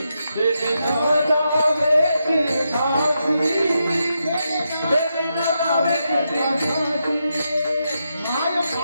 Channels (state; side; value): inverted; both; correlation -0.84